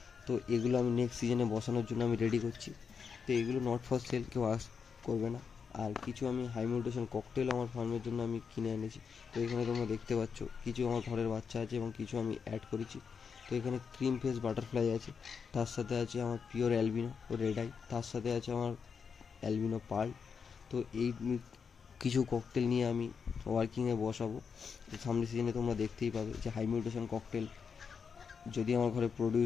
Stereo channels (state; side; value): quieter; right; 6.1 dB